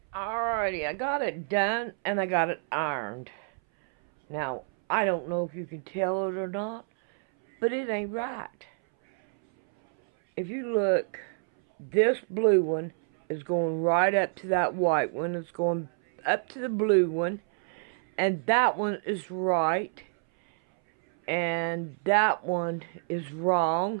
Alrighty, I got it done and I got it ironed. Now, I don't know if you can tell it or not, but it ain't right. If you look, this blue one is going right up to that white one. It's going up to the blue one. And that one is right. And that one is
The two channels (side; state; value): left; silent; 59 dB below the other